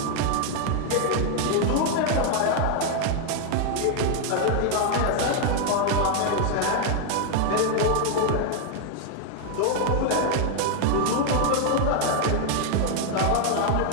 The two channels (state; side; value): different; both; correlation 0.00